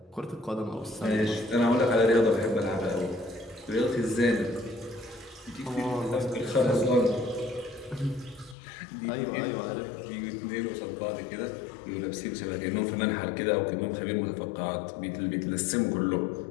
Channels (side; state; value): right; drops out; at 8.6 s